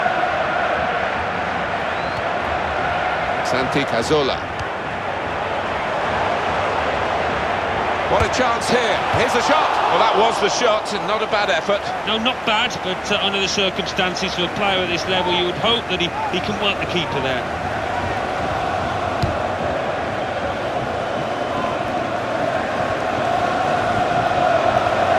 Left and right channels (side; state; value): both; identical; correlation 1.00